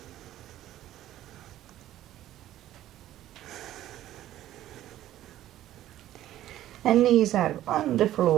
And knees are on the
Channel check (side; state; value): left; quieter; 13.4 dB